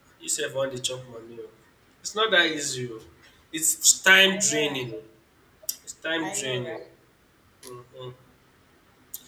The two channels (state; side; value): identical; both; correlation 1.00